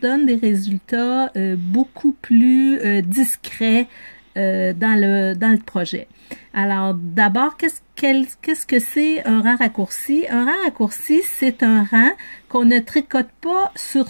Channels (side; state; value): both; inverted; correlation -1.00